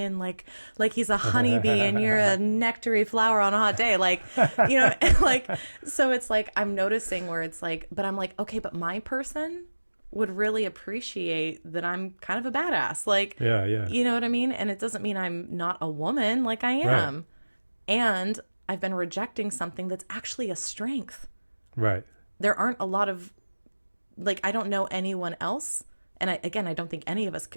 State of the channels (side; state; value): both; inverted; correlation -1.00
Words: like he's a honeybee and you're a nectary flower on a hot day. Like, like, so it's like, I'm noticing where it's like, but I'm like, okay, but my person would really appreciate that I'm kind of a badass. Like, you know what I mean? And it doesn't mean I'm not a woman, like I am. Right. And I've been rejecting something that's actually a strength. Right. There aren't a lot of, like, I don't know anyone else. And I don't think any of us